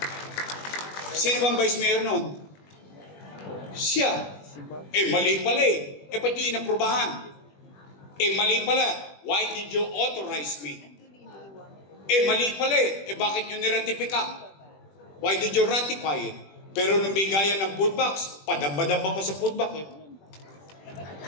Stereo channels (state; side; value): late; right; 20 ms